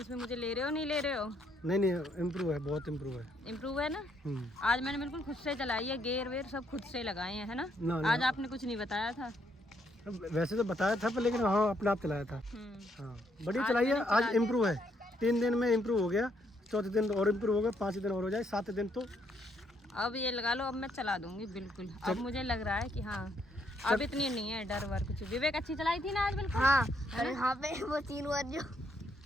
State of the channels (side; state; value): both; normal; correlation 0.73